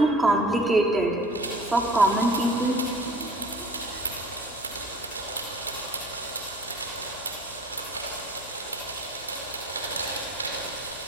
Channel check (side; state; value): left; noise; hum, 23 dB below the sound